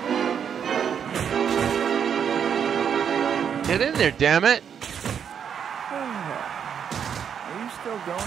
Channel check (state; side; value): quieter; left; 7.9 dB